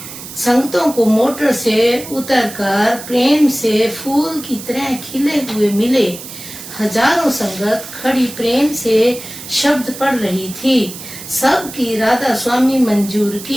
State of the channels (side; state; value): right; noise; hiss, 13 dB below the sound